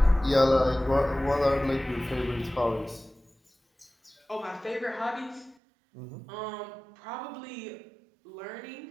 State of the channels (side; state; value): left; drops out; at 5.6 s